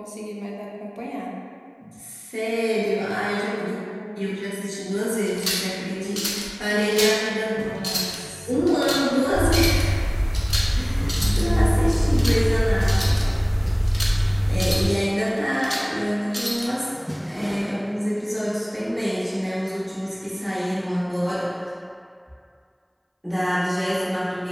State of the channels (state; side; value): identical; both; correlation 1.00